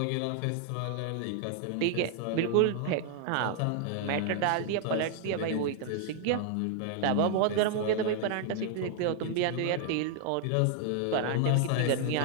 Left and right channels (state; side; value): different; both; correlation 0.00